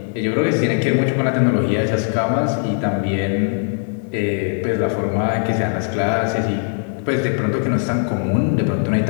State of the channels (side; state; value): right; silent; 66 dB below the other